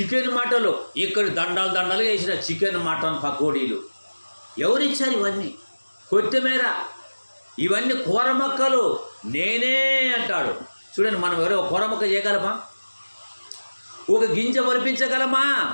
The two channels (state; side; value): inverted; both; correlation -1.00